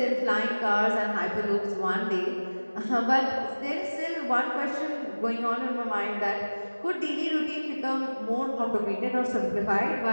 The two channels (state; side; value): inverted; both; correlation -1.00